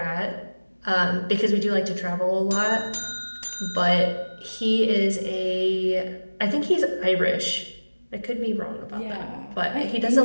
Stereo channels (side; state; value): both; inverted; correlation -1.00